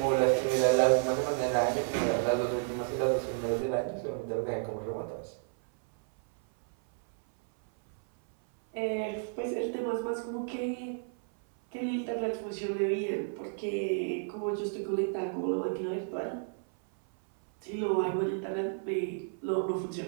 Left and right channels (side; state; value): left; silent; 57 dB below the other